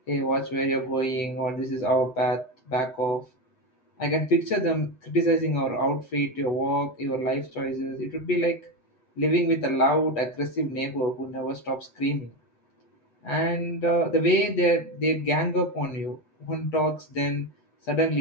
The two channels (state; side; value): late; right; 8.3 ms